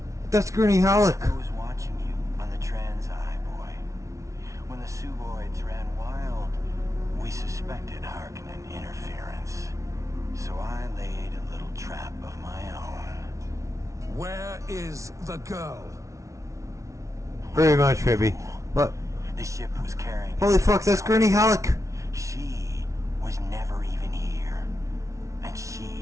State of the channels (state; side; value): late; left; 0.15 ms